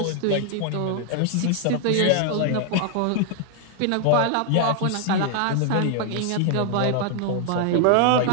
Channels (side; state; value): both; different; correlation 0.00